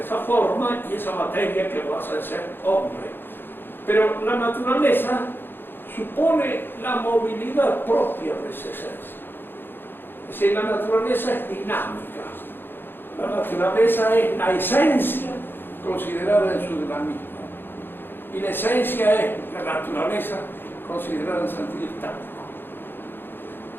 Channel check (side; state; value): right; late; 0.10 ms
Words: forma y esa materia que lo hace ser hombre. Pero la naturaleza supone la movilidad propia de esa esencia. Es decir, la naturaleza es dinámica. La naturaleza es la esencia considerada en su dinamismo. Y la esencia es la naturaleza considerada en sentido estático.